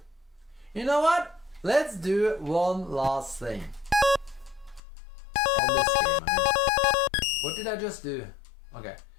You know what? Let's do one last thing. On this game, I mean. What did I just do? Okay.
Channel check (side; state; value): right; drops out; at 4.8 s